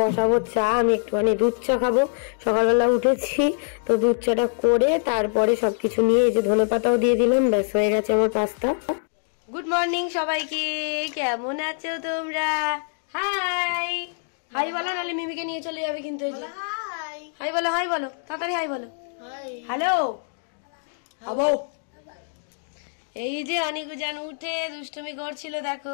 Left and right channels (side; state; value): right; silent; digital silence